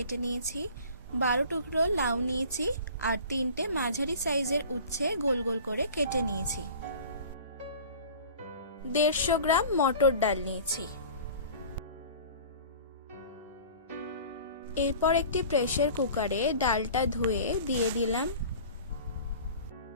নিয়েছি। 12 টুকরো লাউ নিয়েছি আর 3টে মাঝারি সাইজের উচ্ছে গোল গোল করে কেটে নিয়েছি। 150 গ্রাম মটর ডাল নিয়েছি। এরপর একটি প্রেসার কুকারে ডালটা ধুয়ে দিয়ে দিলাম।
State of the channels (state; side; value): inverted; both; correlation -0.41